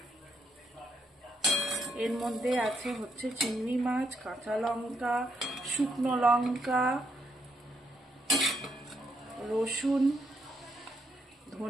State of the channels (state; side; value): normal; both; correlation 0.77